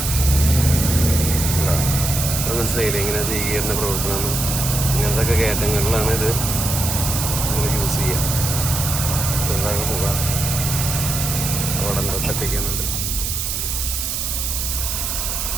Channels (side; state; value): right; noise; hiss, 2 dB below the sound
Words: അത് മനസ്സിലായില്ലേ ഇങ്ങനെ സി ഗിയറിൻ്റെ പ്രവർത്തനം? ഇങ്ങനത്തെ ഒക്കെ കയറ്റങ്ങളിലാണ് ഇത് നമ്മൾ യൂസ് ചെയ്യുക. ചെറുതാകെ പോകാം. അവിടെ എന്താ തട്ടിക്കുന്നുണ്ട്.